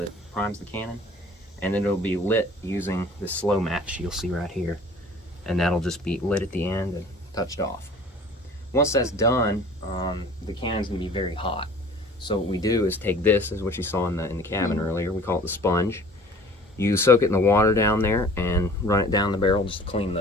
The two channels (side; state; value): both; normal; correlation 0.47